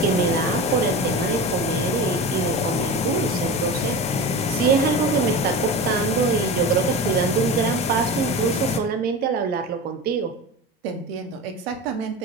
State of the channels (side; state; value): both; normal; correlation 0.29